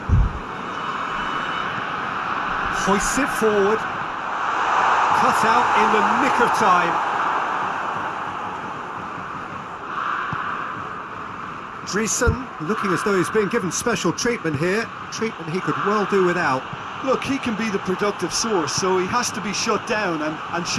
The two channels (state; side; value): identical; both; correlation 1.00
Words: Hoists it forward. Cut out in the nick of time. Dreesen looking as though he's being given special treatment here. Treatment he could well do without. Look, he can be the productive source, so he has to be shut down and